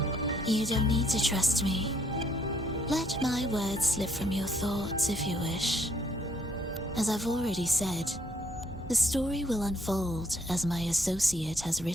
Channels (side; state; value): both; normal; correlation 0.68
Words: You don't need to trust me. Let my words slip from your thoughts if you wish. As I've already said, the story will unfold as my associate has